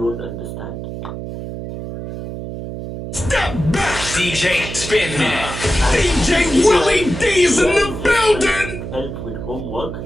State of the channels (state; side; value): noise; right; hum, 8 dB below the sound